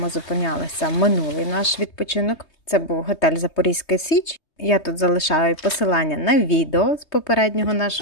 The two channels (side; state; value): right; late; 3.2 ms